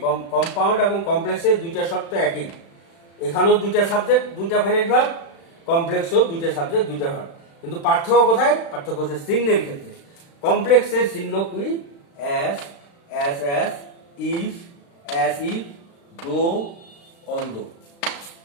কম্পাউন্ড এবং কমপ্লেক্সের দুইটা শর্ত একই। এখানেও দুইটা সাবজেক্ট, দুইটা ফাইনাইট ভার্ব, কমপ্লেক্সও দুইটা সাবজেক্ট, দুইটা ভার্ব। কিন্তু পার্থক্য কোথায়? পার্থক্য হচ্ছে চিহ্নের ক্ষেত্রে। কমপ্লেক্সের চিহ্ন কি? As, as, if, as if, though, although.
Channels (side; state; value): right; late; 36 ms